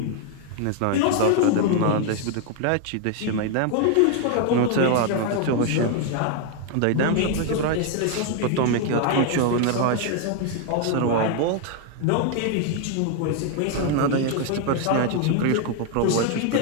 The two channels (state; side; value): different; both; correlation 0.01